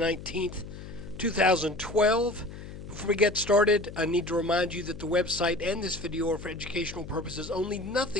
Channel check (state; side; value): noise; left; hum, 12 dB below the sound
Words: 2012. Before we get started, I need to remind you that the website and this video are for educational purposes only.